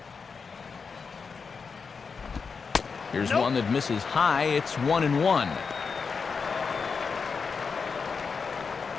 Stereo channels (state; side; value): quieter; right; 5.3 dB